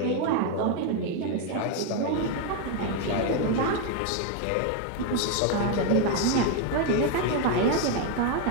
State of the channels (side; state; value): both; different; correlation 0.01